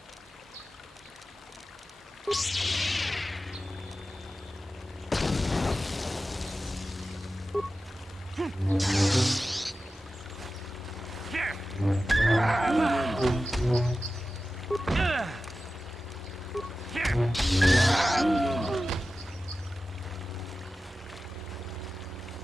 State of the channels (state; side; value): normal; both; correlation 0.94